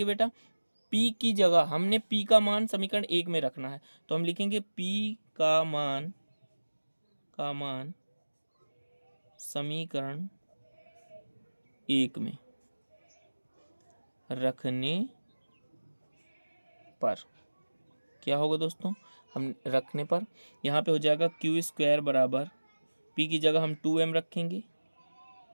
बेटा, p की जगह हमने p का मान समीकरण 1 में रखना है, तो हम लिखेंगे p का मान समीकरण 1 में रखने पर क्या होगा दोस्तों, हम रखने पर यहाँ पे हो जाएगा क्यू स्क्वायर बराबर p की जगह हम 2m रखेंगे।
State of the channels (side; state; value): both; inverted; correlation -1.00